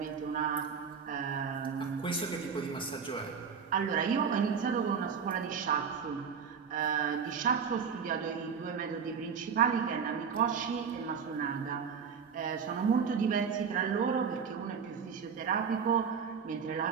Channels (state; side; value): quieter; left; 6.5 dB